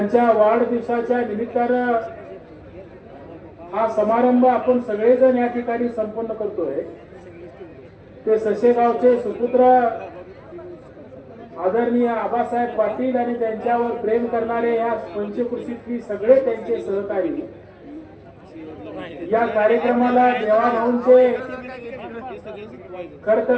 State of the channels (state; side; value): identical; both; correlation 1.00